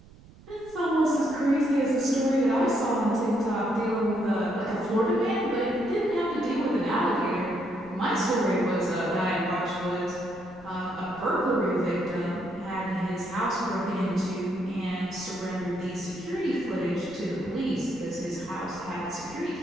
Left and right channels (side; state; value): right; noise; rumble, 22 dB below the sound